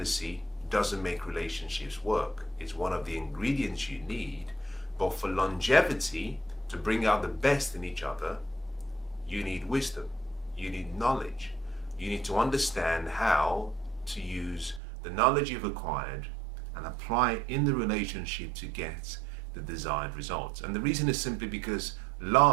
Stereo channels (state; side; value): drops out; left; at 14.8 s